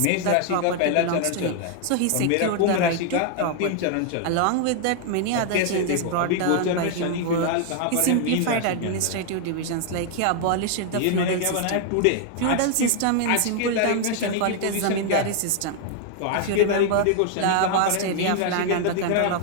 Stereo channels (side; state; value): both; different; correlation 0.00